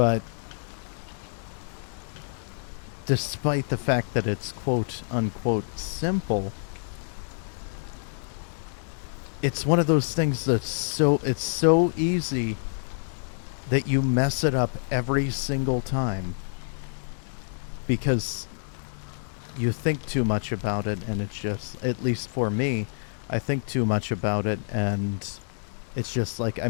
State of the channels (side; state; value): right; silent; 60 dB below the other